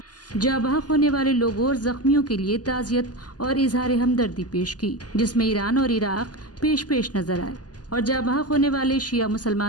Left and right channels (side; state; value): right; late; 0.68 ms